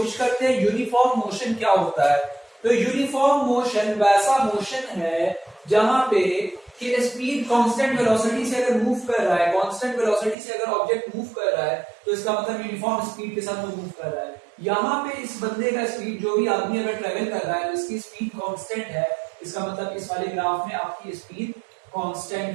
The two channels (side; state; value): left; drops out; at 10.4 s